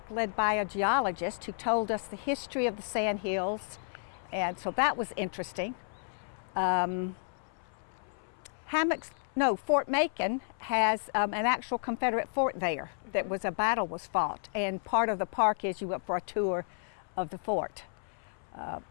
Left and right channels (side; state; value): right; silent; 56 dB below the other